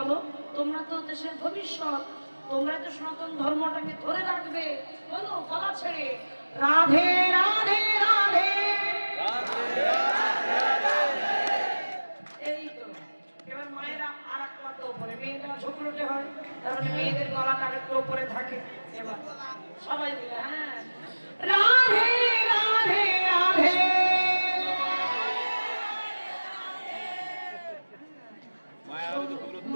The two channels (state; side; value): inverted; both; correlation -1.00